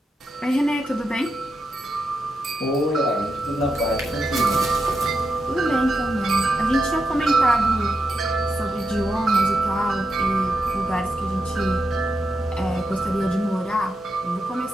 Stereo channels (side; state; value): both; normal; correlation 0.86